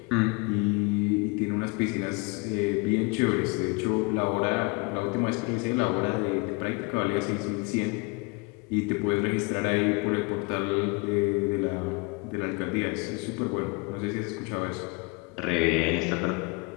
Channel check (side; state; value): right; quieter; 28.8 dB